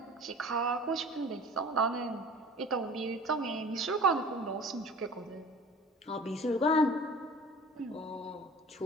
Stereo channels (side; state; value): both; normal; correlation 0.43